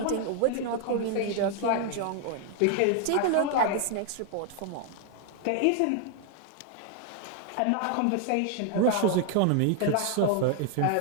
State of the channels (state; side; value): different; both; correlation 0.00